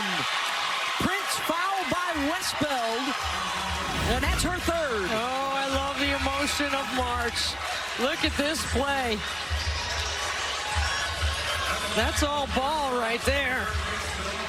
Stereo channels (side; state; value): both; identical; correlation 1.00